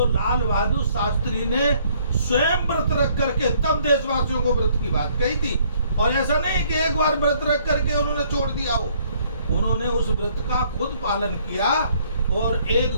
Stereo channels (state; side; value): inverted; both; correlation -0.63